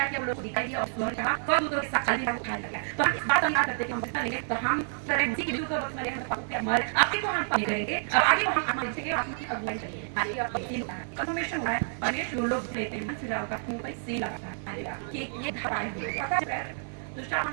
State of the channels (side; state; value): left; silent; digital silence